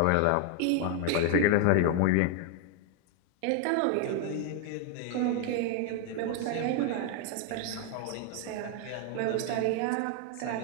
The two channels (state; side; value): different; both; correlation 0.01